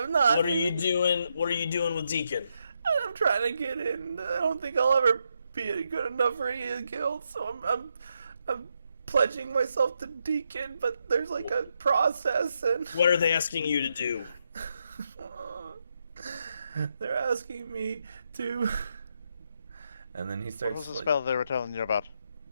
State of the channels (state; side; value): inverted; both; correlation -0.81